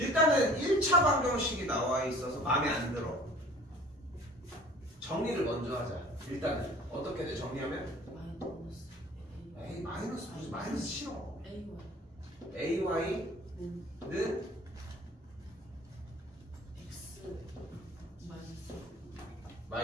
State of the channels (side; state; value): both; normal; correlation 0.48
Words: 1차 방정식이 나와 있어서 마음에 안 들어. 정리를 먼저 하자. 일단은 어떻게 돼? 정리하면? 에이 마이너스 무슨 마이너스 싫어. AY는 X